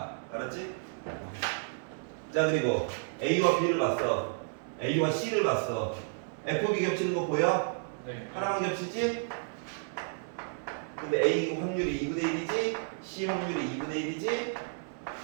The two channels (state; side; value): silent; left; 57 dB below the other